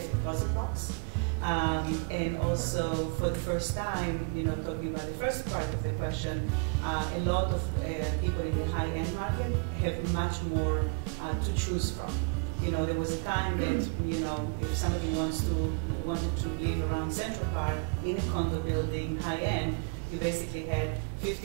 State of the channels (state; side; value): quieter; left; 36.5 dB